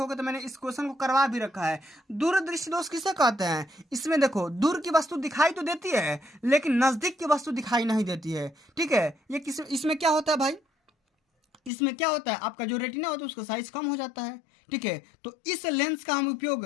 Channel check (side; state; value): right; drops out; at 11.7 s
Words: तो मैंने इस क्वेश्चन को करवा भी रखा है। दूरदृष्टि दोष किसे कहते हैं, इसमें देखो दूर की वस्तु दिखाई तो देती है लेकिन नजदीक की वस्तु दिखाई नहीं देती है। ठीक है, ये इसमें क्या होता है भाई, इसमें क्या होता है, आपका जो रेटिना होता है उसका साइज कम हो जाता है। ठीक है, तो इस लेंस का हम